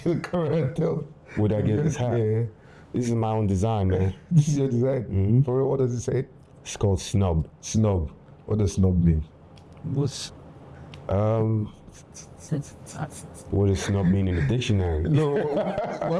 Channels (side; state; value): both; identical; correlation 1.00